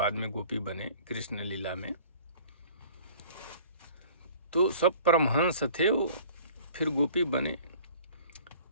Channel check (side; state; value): both; inverted; correlation -0.49